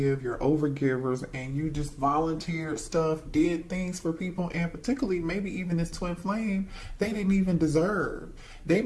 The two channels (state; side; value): identical; both; correlation 1.00